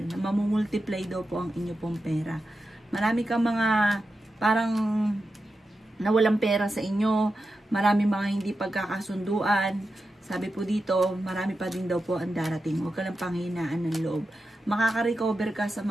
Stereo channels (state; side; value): normal; both; correlation 0.90